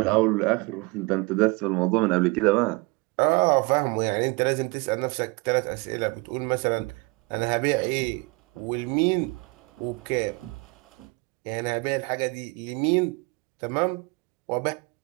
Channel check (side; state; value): left; quieter; 27.5 dB